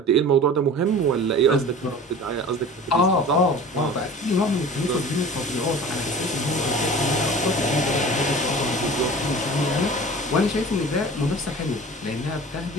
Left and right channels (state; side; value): normal; both; correlation 0.39